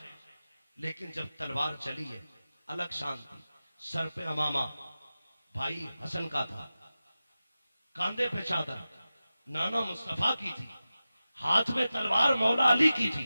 लेकिन जब तलवार चली है अलग शांति। सर पे अमामा भाई हसन का था, कांधे पे चादर, नाना मुस्तफा की थी, हाथ में तलवार मौला अली की थी,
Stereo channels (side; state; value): both; inverted; correlation -0.95